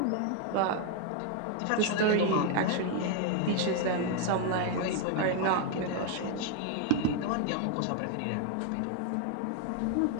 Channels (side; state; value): both; different; correlation 0.01